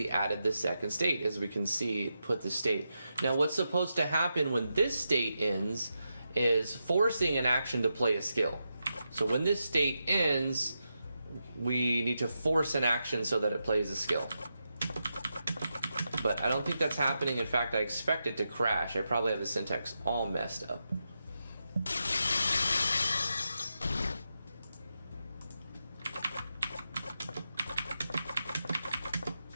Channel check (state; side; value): inverted; both; correlation -0.87